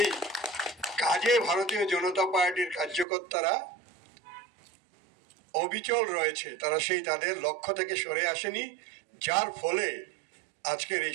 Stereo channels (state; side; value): drops out; left; at 3.1 s